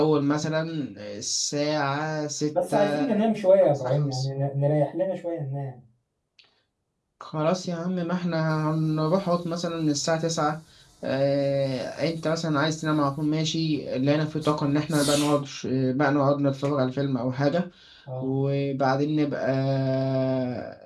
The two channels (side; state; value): both; identical; correlation 1.00